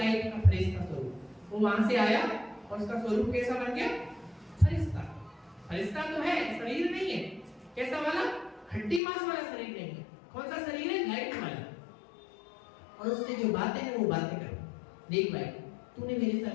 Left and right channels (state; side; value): drops out; right; at 9.0 s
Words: का फरिश्ता स्वरूप, वो वहां से आया और उसका स्वरूप कैसा बन गया? फरिश्ता। फरिश्ता तो है, शरीर नहीं है। कैसा वाला? हड्डी मांस वाला शरीर नहीं है। कौन सा शरीर है? लाइट वाला। और उससे जो बातें हैं वो बातें करो। देख भाई, तूने मेरे